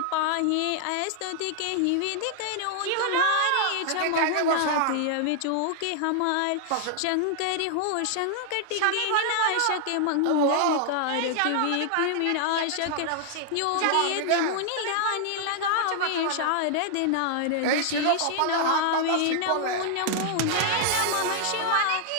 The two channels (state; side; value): different; both; correlation 0.00